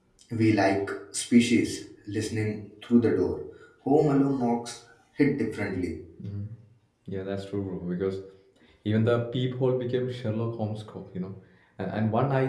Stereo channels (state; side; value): identical; both; correlation 1.00